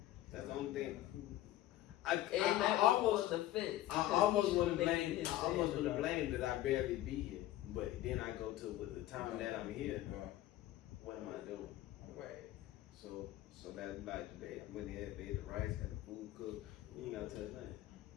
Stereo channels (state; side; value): quieter; right; 14.5 dB